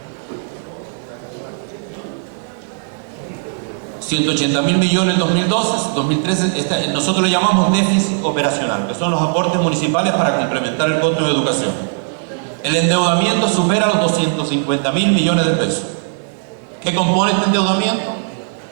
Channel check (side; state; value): left; silent; digital silence